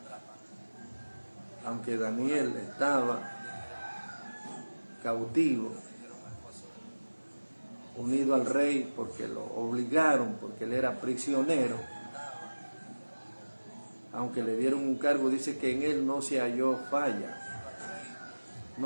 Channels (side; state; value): both; inverted; correlation -1.00